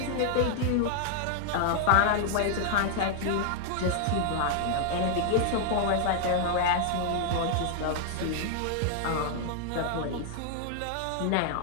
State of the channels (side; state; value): both; different; correlation -0.01